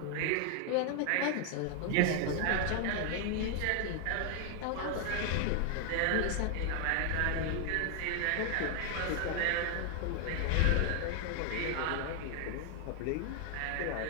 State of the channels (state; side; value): different; both; correlation 0.00